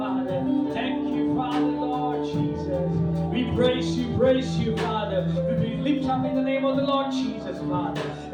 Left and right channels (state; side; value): identical; both; correlation 1.00